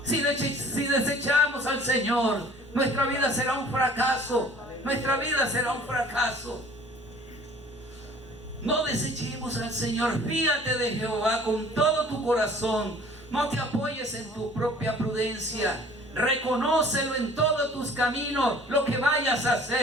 Si desechamos al Señor, nuestra vida será un fracaso. Nuestra vida será un fracaso. No desechemos al Señor. Fíate de Jehová con todo tu corazón. No te apoyes en tu propia prudencia. Reconócelo en todos tus caminos, lo que vayas a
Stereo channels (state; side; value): normal; both; correlation 0.51